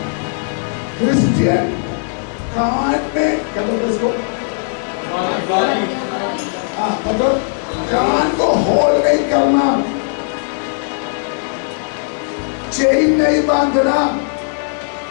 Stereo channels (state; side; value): silent; right; digital silence